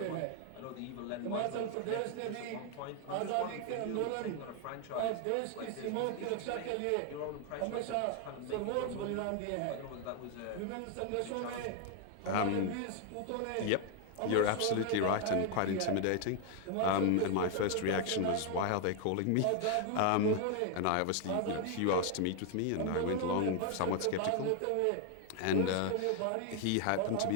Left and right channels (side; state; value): both; different; correlation 0.00